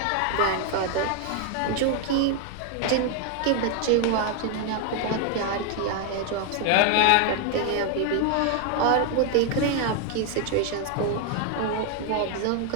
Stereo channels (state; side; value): different; both; correlation 0.01